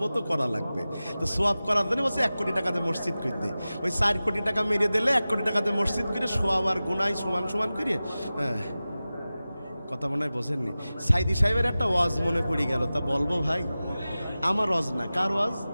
তো করা লাগবে। তো সোয়াব করার জন্য বলছে 1 কোটি টাকাতে মসজিদ করে দে। ওই 4 কোটি টাকা মেরিয়ে দিলে 1 কোটি টাকাতে মসজিদ করে সোয়াব আর গুনাহ সমান সমান করে। হ্যাঁ, কথা মনে হয় বোঝেননি। সাইদি সাহেবের একটা ওয়াজ মনে পড়ে গেল, তা বলবো ভাই? আমার ওয়াজ না, কার ওয়াজ?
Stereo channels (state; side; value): inverted; both; correlation -0.96